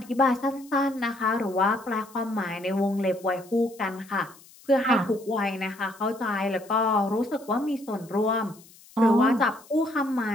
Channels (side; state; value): left; noise; hiss, 24 dB below the sound